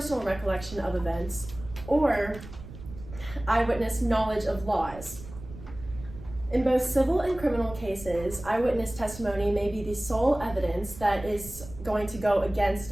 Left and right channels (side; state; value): right; noise; rumble, 15 dB below the sound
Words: recollection of events, or eyewitness knowledge of laws. In both civil and criminal cases, eyewitness testimony may be the sole evidence that is going to go